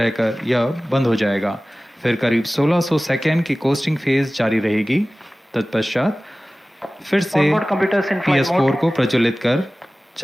यह बंद हो जाएगा, फिर करीब 1600 सेकेंड की कोस्टिंग फेज जारी रहेगी। तत्पश्चात फिर से PS4 को प्रज्वलित कर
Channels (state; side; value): normal; both; correlation 0.97